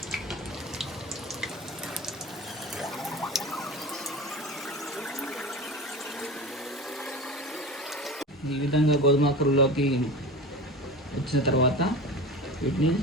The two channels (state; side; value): normal; both; correlation 0.31